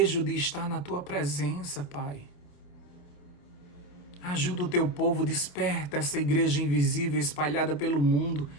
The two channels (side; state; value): right; late; 28 ms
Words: de estar na Tua presença, Pai. Ajuda o Teu povo, desperta essa igreja invisível espalhada pelo mundo